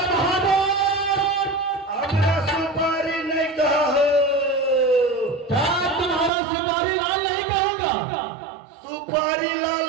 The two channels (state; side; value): drops out; left; at 6.3 s